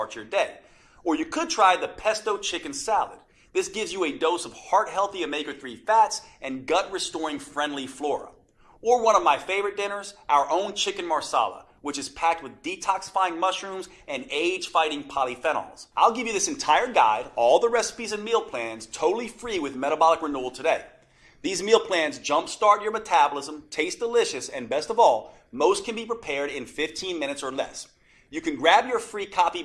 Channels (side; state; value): both; identical; correlation 1.00